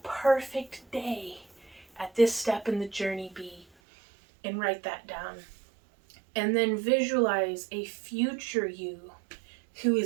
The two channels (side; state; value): left; drops out; at 3.7 s